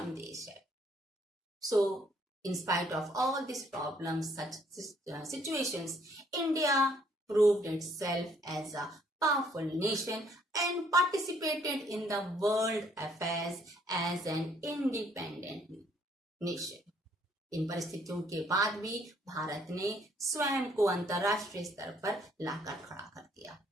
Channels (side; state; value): both; normal; correlation 0.65